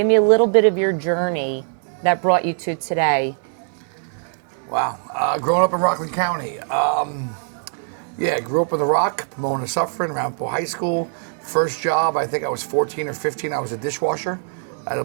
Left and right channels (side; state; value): left; silent; 59 dB below the other